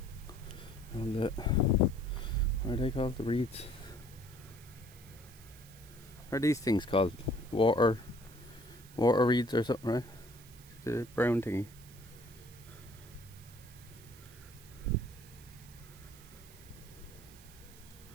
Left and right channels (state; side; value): noise; right; hiss, 21 dB below the sound